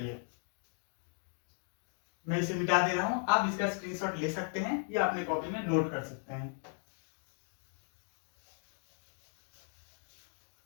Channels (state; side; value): silent; right; 53 dB below the other